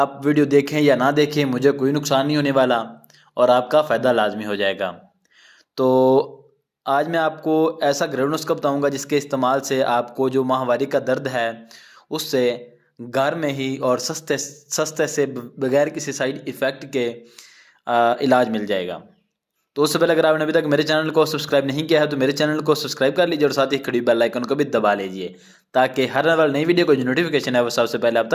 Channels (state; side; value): identical; both; correlation 1.00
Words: वीडियो देखें या ना देखें, मुझे कोई नुकसान नहीं होने वाला और आपका फ़ायदा लाजमी हो जाएगा। तो आज मैं आपको ऐसा घरेलू नुस्खा बताऊंगा जिसके इस्तेमाल से आपको जो माहवारी का दर्द है उससे घर में ही और सस्ते से बगैर किसी साइड इफ़ेक्ट के इलाज मिल जाएगा। तो उससे पहले अगर आपने अभी तक मेरे चैनल को सब्सक्राइब नहीं किया है तो मेरे चैनल को सब्सक्राइब कर लीजिए और साथ ही खड़ी बेल आइकन को भी दबा लीजिए, ताकि हर वाली नई वीडियो को जो नोटिफिकेशन है वो सबसे पहले आप